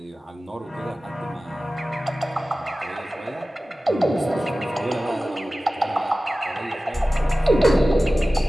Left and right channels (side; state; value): both; normal; correlation 0.96